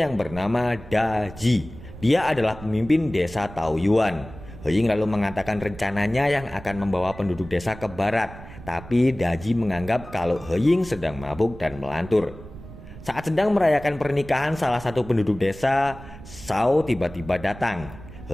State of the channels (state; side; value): noise; right; rumble, 16 dB below the sound